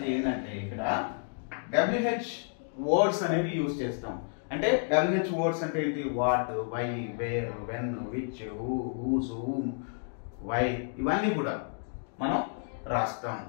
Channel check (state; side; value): silent; right; 57 dB below the other